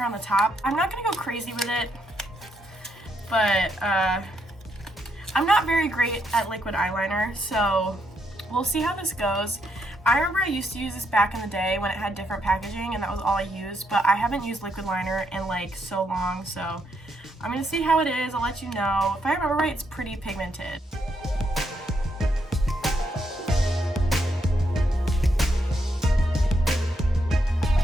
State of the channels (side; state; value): both; normal; correlation 0.77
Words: on the top. I'm not gonna go crazy with it, but I'm not very great at liquid eyeliner, so we'll see how this goes. I remember I used to use this back in the day when it had different packaging and that was all I used, but I haven't used liquid liner in like so long, so I'm gonna see how it is. I'll let you know. If I remember right, it's pretty pigmented.